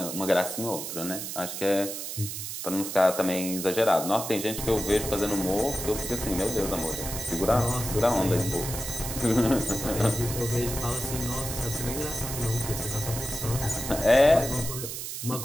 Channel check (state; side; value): noise; right; hiss, 6 dB below the sound